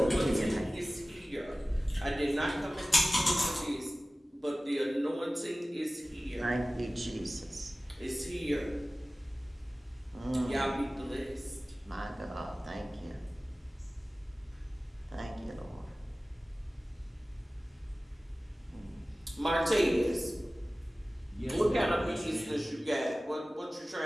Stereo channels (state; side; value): normal; both; correlation 0.97